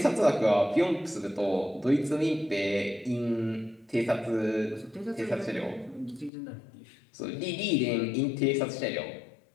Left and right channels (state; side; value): drops out; right; at 6.3 s